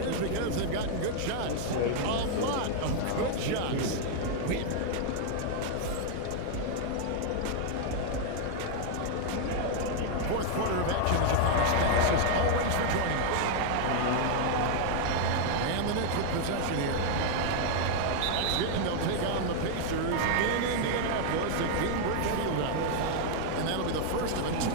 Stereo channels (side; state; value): both; different; correlation 0.00